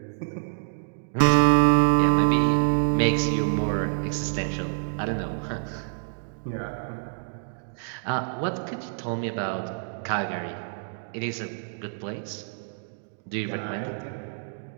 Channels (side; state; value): left; silent; 60 dB below the other